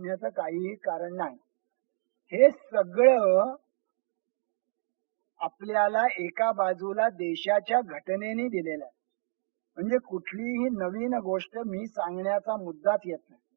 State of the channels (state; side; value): silent; left; 58 dB below the other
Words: काहीही कारण नाही. हे सगळं आपल्याला एका बाजूला देशाच्या घटनेने दिलेला आहे. म्हणजे कुठलीही नवीन गोष्ट मी सांगण्याचा मुद्दाच येत नाही.